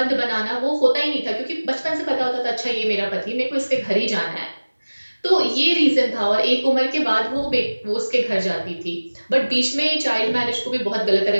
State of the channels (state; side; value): inverted; both; correlation -1.00